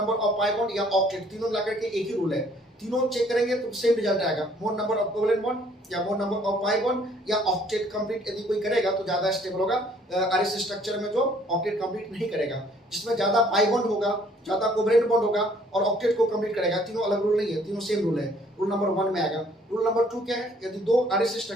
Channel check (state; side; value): normal; both; correlation 0.60